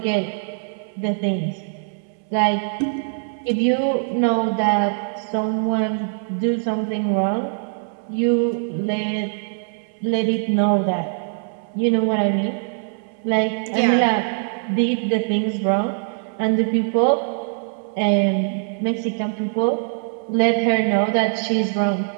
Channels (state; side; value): silent; left; 64 dB below the other